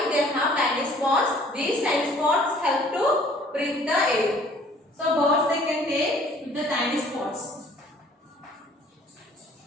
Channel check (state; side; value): normal; both; correlation 0.55